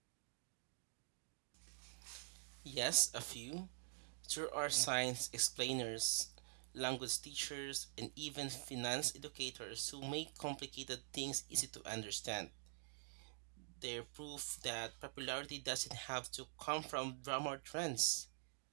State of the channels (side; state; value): left; silent; digital silence